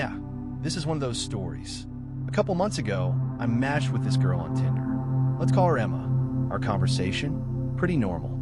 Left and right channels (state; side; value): identical; both; correlation 1.00